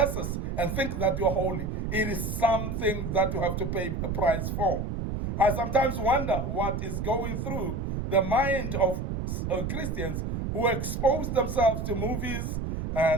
and think that you're holy. It is something that you have to pay a price for. I sometimes wonder what is going through the mind of Christians who expose themselves to movies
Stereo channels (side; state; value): right; noise; rumble, 3 dB below the sound